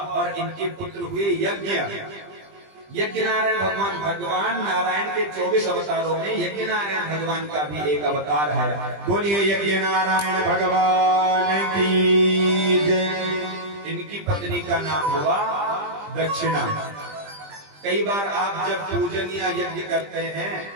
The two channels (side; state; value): left; late; 20 ms